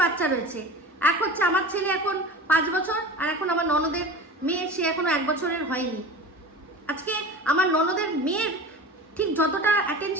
বাচ্চা রয়েছে। এক হচ্ছে আমার ছেলে এখন 5 বছর, আর এখন আমার ননদের মেয়ে, সে এখনো 1 বছরের হয়নি। আজকে আমার ননদের মেয়ের ঠিক যতটা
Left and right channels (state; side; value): normal; both; correlation 0.34